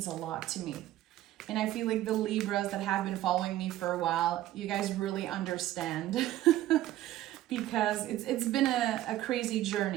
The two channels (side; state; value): left; quieter; 14.2 dB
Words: a lot to me. And I feel like the Libras that have been following me for a while, you guys really understand because it's been a crazy